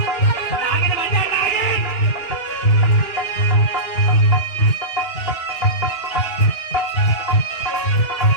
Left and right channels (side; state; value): right; late; 3.2 ms